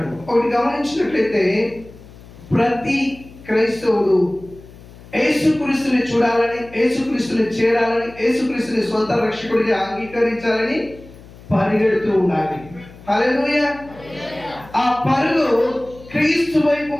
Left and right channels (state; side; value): noise; left; hum, 20 dB below the sound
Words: ఒకటి గమనించినట్లయితే, ప్రతి క్రైస్తవుడు యేసుక్రీస్తుని చూడాలని, యేసుక్రీస్తుని చేరాలని, యేసుక్రీస్తుని సొంత రక్షకుడిగా అంగీకరించాలని పరిగెడుతూ ఉండాలి. హల్లెలూయా. ఆ పరుగు క్రీస్తు వైపు